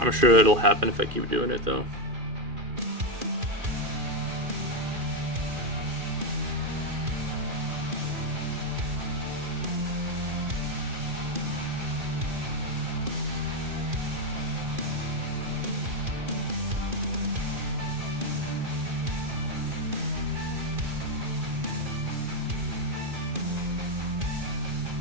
sure it'll happen if I keep doing it though.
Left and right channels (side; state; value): left; late; 2.4 ms